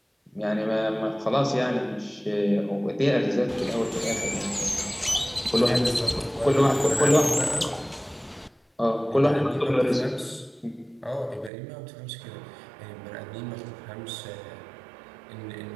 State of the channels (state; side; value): drops out; left; at 11.5 s